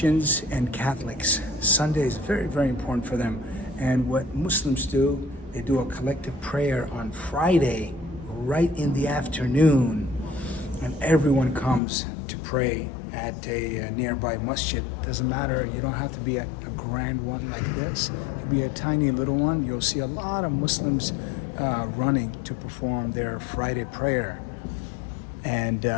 and Catholics. Sunday is very, very important for them. And what Muslims do, they do a collective prayer on Friday, right in the afternoon. And everyone comes to pray at a nearby masjid. Doesn't matter, you don't have to be at a grand one like this. It could be a tiny little one. You'll see a lot of Muslims running to perform their Friday prayer. And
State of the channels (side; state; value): right; drops out; at 11.8 s